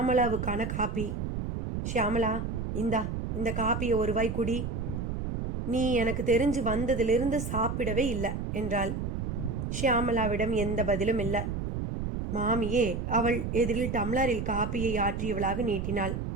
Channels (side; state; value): right; noise; rumble, 3 dB below the sound